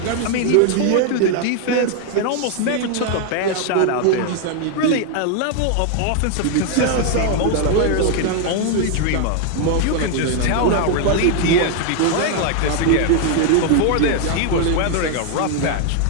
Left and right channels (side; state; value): both; different; correlation 0.00